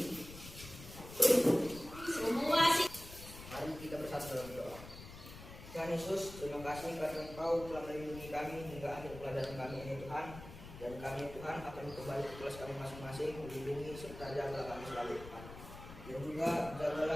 Semua sih. Mari kita bersatu dalam doa. Tuhan Yesus, terima kasih karena Engkau telah melindungi kami hingga akhir pelajaran kami ini Tuhan. Dan kami Tuhan akan kembali ke kelas kami masing-masing, melindungi serta jagalah kami selalu Tuhan. Dan juga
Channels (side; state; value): left; noise; rumble, 14 dB below the sound